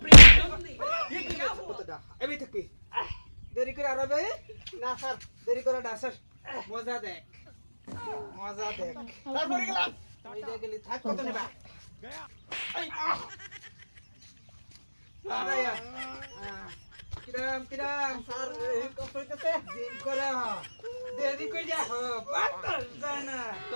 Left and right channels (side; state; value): both; inverted; correlation -1.00